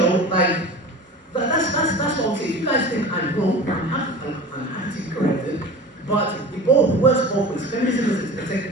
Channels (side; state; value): both; normal; correlation 0.35